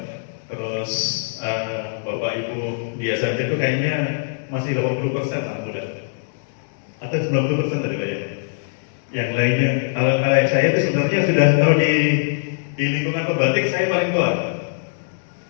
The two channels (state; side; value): silent; right; digital silence